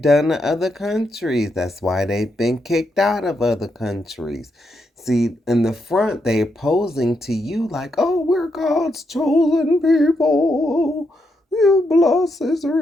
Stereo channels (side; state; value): both; normal; correlation 0.81